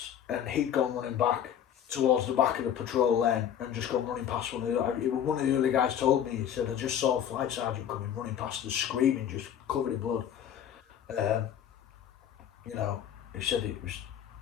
And he'd gone running back towards the back of the patrol lane and just gone running past one of the other guys told me, he said, I just saw a flight sergeant coming running past us screaming, just covered in blood. You know, he said it was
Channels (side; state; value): right; quieter; 9.6 dB